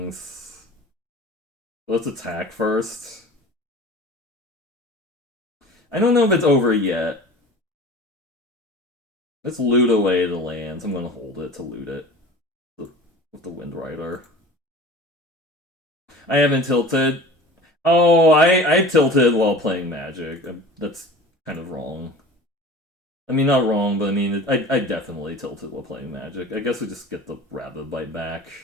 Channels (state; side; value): normal; both; correlation 0.39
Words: Let's attack first. I don't know if it's over yet. Let's loot away the lands. I'm gonna hold it to loot it with the Wind Rider. I haven't tilted. Oh, I tilted while playing Magic. That's kind of wrong. I mean, not wrong, but I mean, I definitely tilted while playing Magic. I guess we just get the Rabbit Bite back.